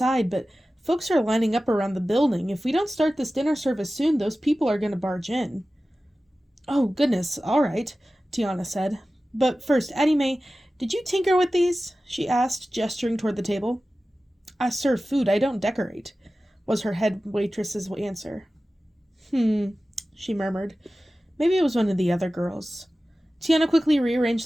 but folks are lining up around the building. If we don't start this dinner service soon, those people are going to barge in. Oh, goodness, all right, Tiana said. But first, Addie Mae, did you tinker with these? She asked, gesturing toward the table. I serve food, I don't decorate, was her head waitress's answer. She murmured. Maybe it was one of the other girls. Tiana quickly rearranged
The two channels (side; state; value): both; normal; correlation 0.95